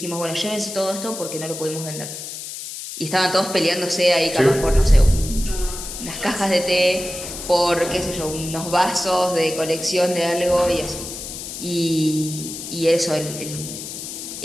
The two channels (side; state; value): left; noise; hiss, 9 dB below the sound